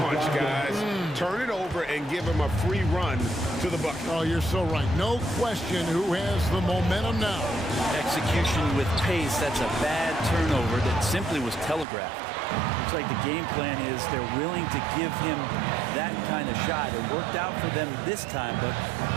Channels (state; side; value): drops out; left; at 11.9 s